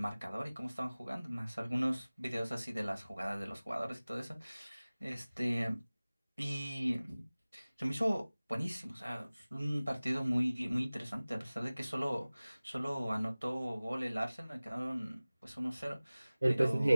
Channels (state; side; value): inverted; both; correlation -0.99